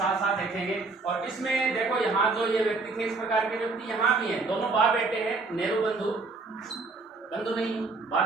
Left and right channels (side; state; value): left; quieter; 3.8 dB